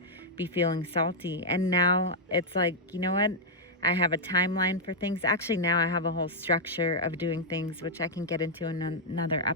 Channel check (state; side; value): normal; both; correlation -0.04